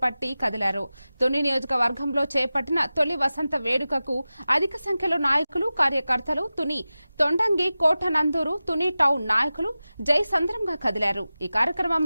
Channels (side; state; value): both; inverted; correlation -0.96